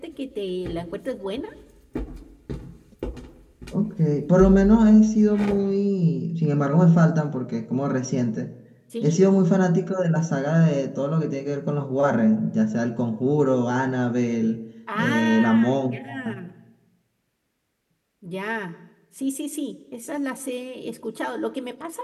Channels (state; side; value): identical; both; correlation 1.00